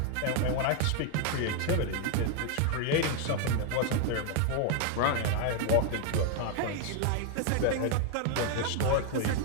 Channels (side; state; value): both; different; correlation 0.00